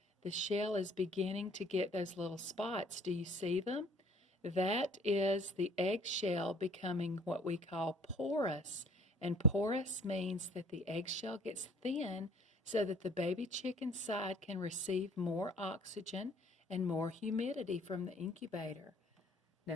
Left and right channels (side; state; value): both; normal; correlation 0.55